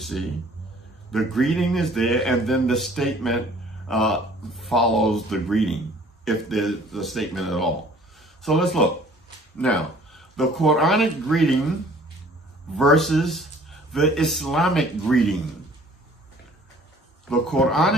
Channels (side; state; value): both; normal; correlation 0.53